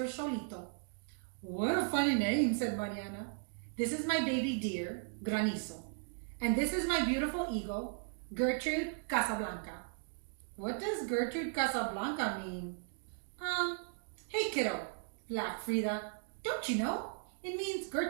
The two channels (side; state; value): left; silent; digital silence